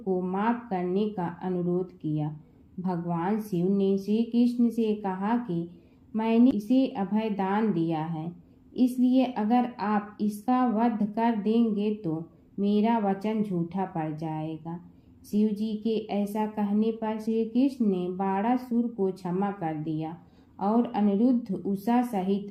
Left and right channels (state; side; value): identical; both; correlation 1.00